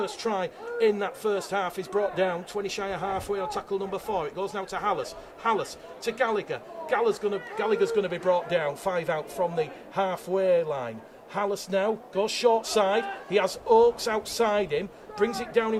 try in that first half, is brought down 20 shy of halfway on tackle number 4. It goes now to Hallis. Hallis to Gallagher. Gallagher's going to be brought down 5 out from the halfway line. Hallis now goes short side. He has Oakes outside him. Brings it down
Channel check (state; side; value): identical; both; correlation 1.00